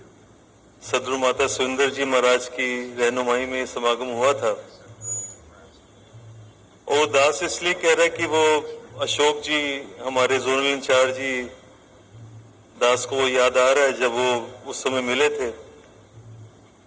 सदगुरु माता सुंदर जी महाराज की रहनुमाई में समागम हुआ था, वो दास इसलिए कह रहा है कि वो अशोक जी हमारे जोनल इंचार्ज जी दास को वो याद आ रहा है जब वो उस समय मिले थे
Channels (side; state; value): both; identical; correlation 1.00